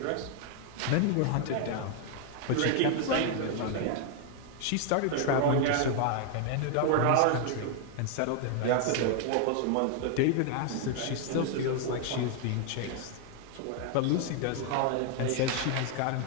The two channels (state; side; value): different; both; correlation 0.00